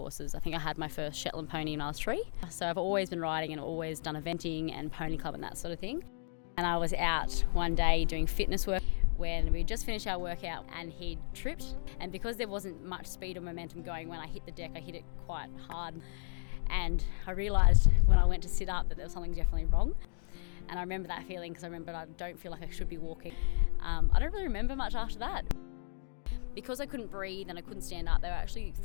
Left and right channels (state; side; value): silent; right; digital silence